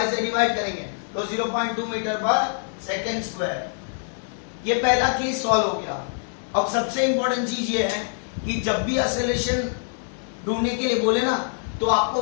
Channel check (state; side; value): silent; right; 60 dB below the other